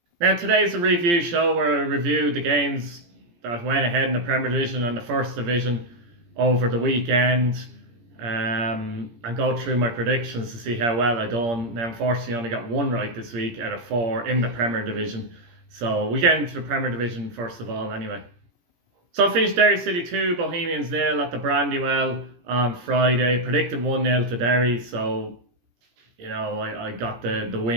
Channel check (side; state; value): left; late; 17 ms